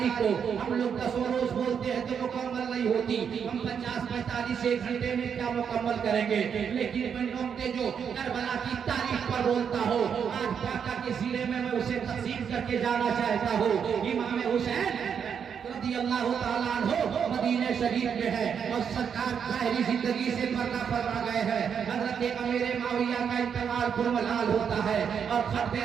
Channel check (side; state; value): left; quieter; 7.3 dB